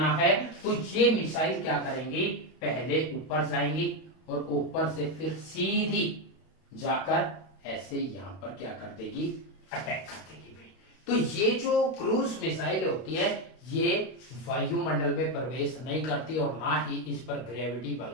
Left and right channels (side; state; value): right; late; 32 ms